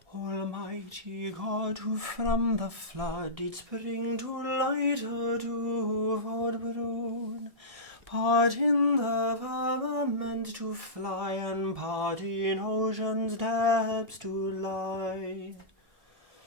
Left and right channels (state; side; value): late; left; 1.6 ms